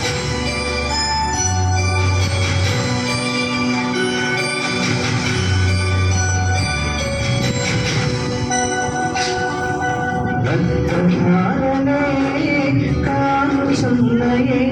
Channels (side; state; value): both; identical; correlation 1.00